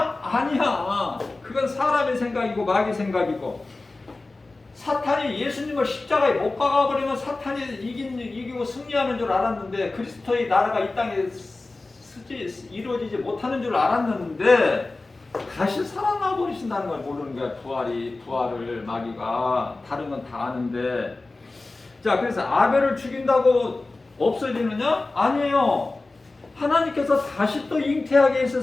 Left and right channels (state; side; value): quieter; right; 3.3 dB